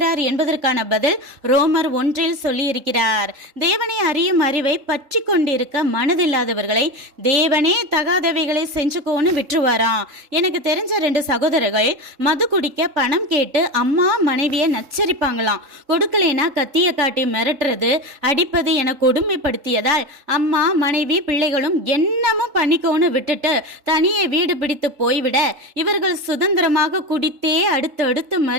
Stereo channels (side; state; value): left; late; 3.7 ms